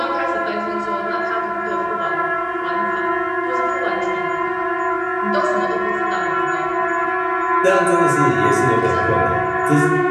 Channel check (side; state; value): both; identical; correlation 1.00